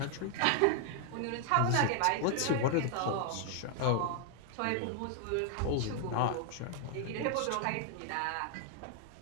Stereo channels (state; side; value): different; both; correlation 0.00